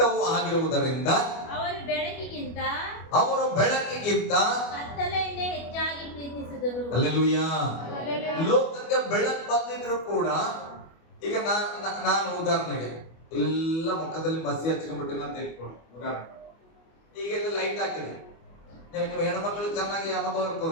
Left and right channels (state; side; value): late; right; 25 ms